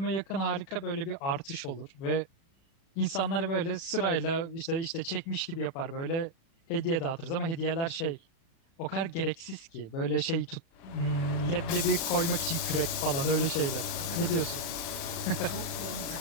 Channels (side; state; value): right; late; 37 ms